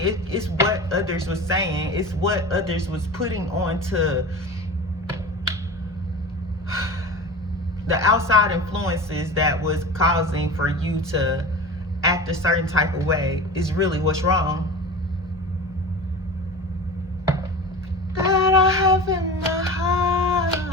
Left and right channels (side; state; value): both; normal; correlation 0.32